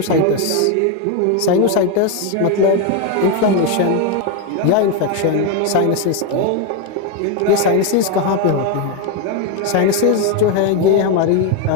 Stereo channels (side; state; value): both; different; correlation 0.02